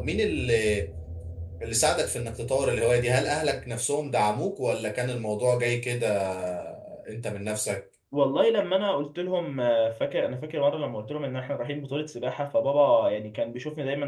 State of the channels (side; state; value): both; identical; correlation 1.00